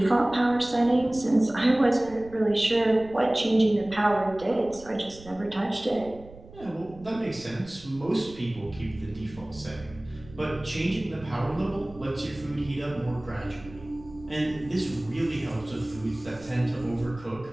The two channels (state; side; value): noise; right; rumble, 19 dB below the sound